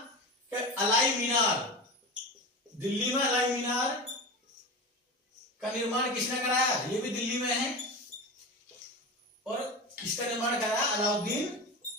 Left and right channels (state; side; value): normal; both; correlation 0.26